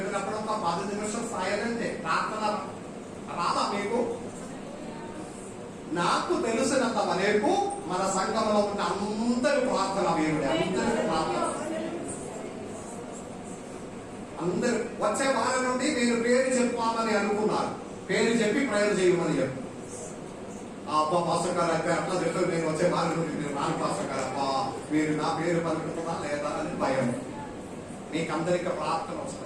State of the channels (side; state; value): both; identical; correlation 1.00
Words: ఒక 10 నిమిషం సైలెంటే. ప్రార్థన రాదా మీకు? నాకు తెలిసినంత వరకు మన సంఘంలో ఉన్న అందరి ప్రార్థన దేవుడే. అందరి ప్రార్థన, అందరు వచ్చే వారం నుండి మీరు పేరు చెప్పాలని అనుకున్నారు, పేరు చెప్పి ప్రేయర్ చేయమని చెప్పు. అబ్బా పాస్టర్ గారు అయితే అట్లా చెప్తారు, నేను వచ్చే వారం నుండి నేను రాను పాస్టర్ గారు, అబ్బా మీరు నా పేరు పలుకుతుందా లేదా అని భయం. మీకు అందరికీ ప్రార్థన